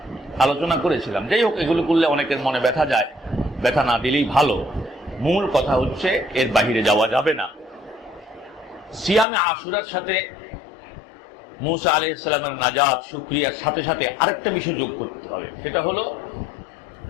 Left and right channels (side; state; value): right; drops out; at 9.2 s